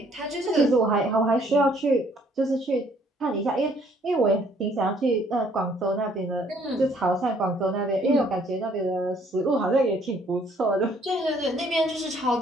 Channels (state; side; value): normal; both; correlation 0.63